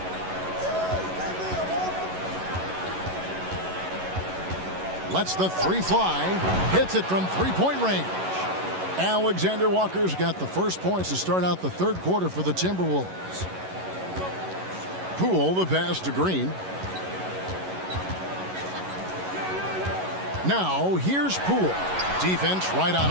Lets the three fly, hits it from three-point range. Alexander Walker's got the first points to start out the third quarter for the Timberwolves. Poole, the pass to Green. Now, here's Poole. Defense right on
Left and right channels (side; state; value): left; late; 11 ms